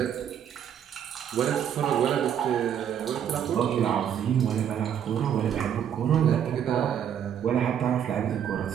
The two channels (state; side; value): quieter; left; 9.1 dB